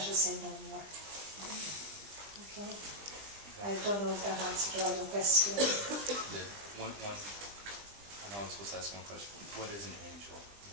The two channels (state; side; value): late; left; 20 ms